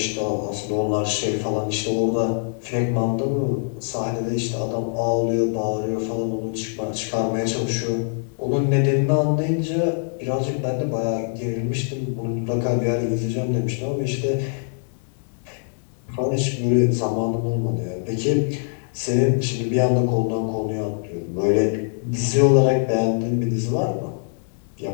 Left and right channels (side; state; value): right; silent; digital silence